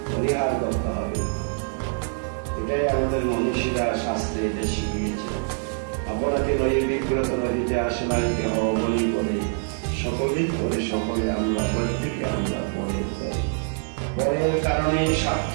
পরিহার করতে হবে। এটাই আমাদের মনীষীরা শাস্ত্রে এটা শিখিয়েছে। আপনাকে নয় বিগ্রত নদীতে আসলাইতে হওয়া বলি বলে সকলেই করে, সকলে আমরা প্রত্যেকে আমরা পরের করি। পরের কারণে স্বার্থ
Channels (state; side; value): silent; left; 62 dB below the other